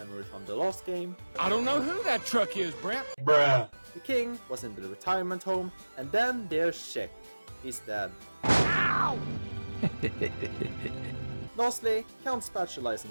from the last game, I don't know who that truck is, Brent. Bruh. the King was in the retirement home, and then there's Sheck. He's dead. Ow! Lastly, Count Spatula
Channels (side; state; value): both; inverted; correlation -1.00